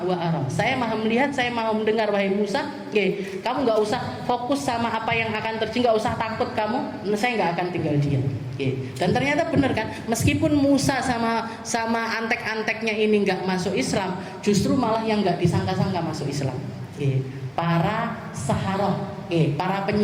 wa ara. Saya maha melihat, saya maha mendengar wahai Musa. Kamu nggak usah fokus sama apa yang akan terjadi, nggak usah takut kamu. Saya nggak akan tinggal diam. Dan ternyata benar kan, meskipun Musa sama antek-anteknya ini nggak masuk Islam, justru malah yang nggak disangka-sangka masuk Islam. Para saharoh, para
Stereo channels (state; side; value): identical; both; correlation 1.00